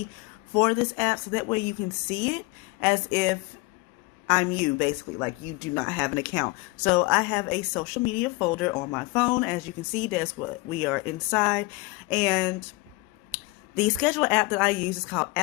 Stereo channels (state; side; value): quieter; right; 23.3 dB